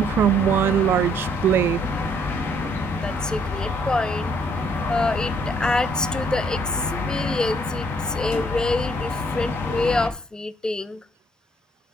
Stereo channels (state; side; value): normal; both; correlation 0.66